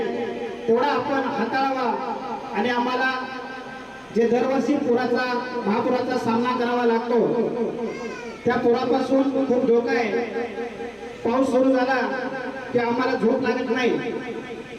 तेवढा आपण हाताळावा आणि आम्हाला जे दरवर्षी महापुराचा सामना करावा लागतो त्या पुरापासून खूप धोका आहे। पाऊस सुरू झाला की आम्हाला झोप लागत नाही,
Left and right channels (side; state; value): both; identical; correlation 1.00